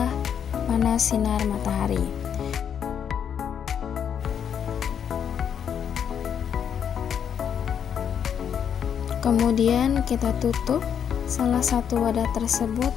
panas sinar matahari. Kemudian kita tutup salah satu wadah tersebut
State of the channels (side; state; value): right; quieter; 8.2 dB